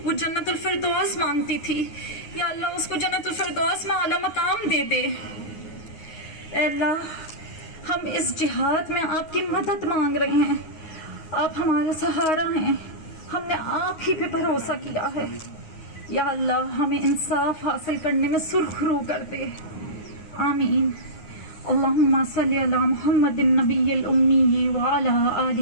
وہ جنت الفردوس مانگتی تھی، یا اللہ اس کو جنت الفردوس میں اعلیٰ مقام دے دے۔ اے اللہ ہم اس جہاد میں آپ کی مدد مانگ رہے ہیں، آپ ہمارا سہارا ہیں، ہم نے آپ ہی پہ بھروسہ کیا ہے۔ یا اللہ ہمیں انصاف حاصل کرنے میں سرخ رو کر دے، آمین۔ اللہم صلی علی محمد النبی الامی وعلی آل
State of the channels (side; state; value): right; late; 9.5 ms